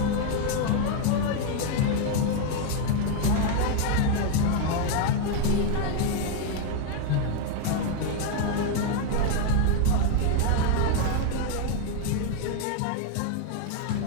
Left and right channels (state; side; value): different; both; correlation 0.01